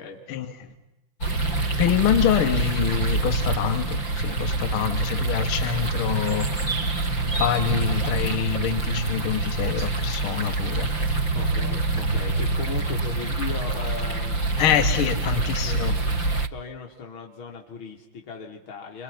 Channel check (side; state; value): right; late; 5.8 ms